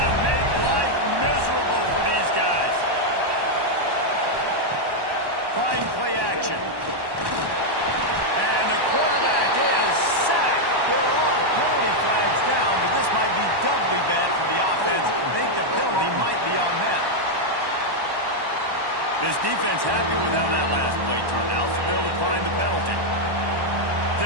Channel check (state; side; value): late; left; 1.1 ms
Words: make life miserable for these guys. Fine play action. And the quarterback is sacked. There are penalty flags down, but this might be doubly bad for the offense. I think the penalty might be on them. This defense happy with how that last play turned out, so they'll decline the penalty.